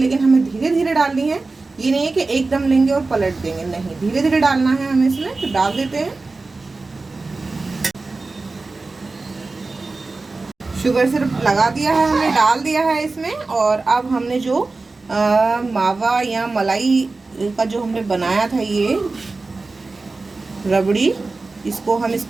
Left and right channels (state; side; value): quieter; left; 3.6 dB